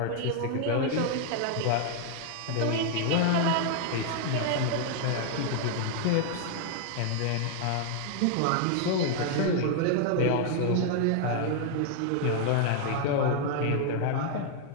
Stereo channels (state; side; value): different; both; correlation 0.00